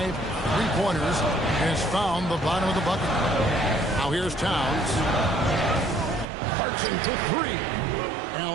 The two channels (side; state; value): left; drops out; at 6.2 s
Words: 3-pointers has found the bottom of the bucket. Now here's Towns. Clarkson for 3.